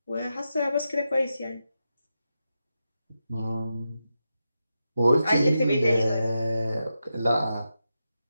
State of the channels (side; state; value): both; inverted; correlation -0.88